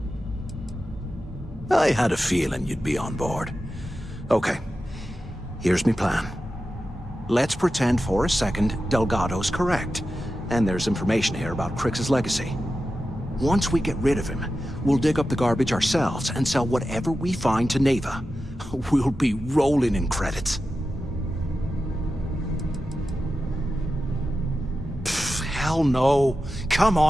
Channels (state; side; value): normal; both; correlation 0.92